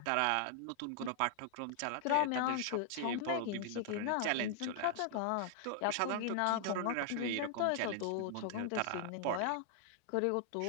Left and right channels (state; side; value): different; both; correlation 0.00